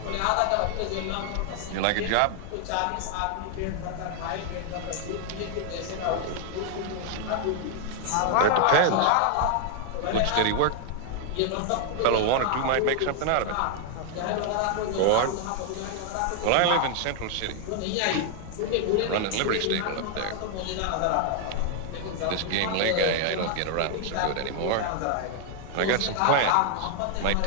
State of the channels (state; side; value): different; both; correlation 0.00